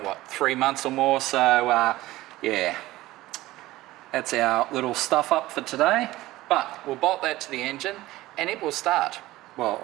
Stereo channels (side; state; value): left; quieter; 17.4 dB